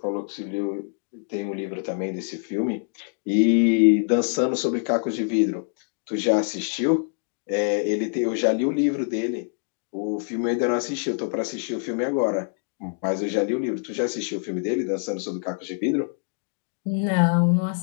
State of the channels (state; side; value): silent; right; 62 dB below the other